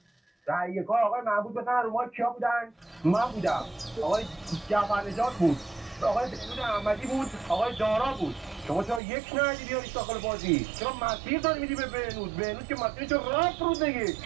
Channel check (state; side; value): drops out; left; at 9.0 s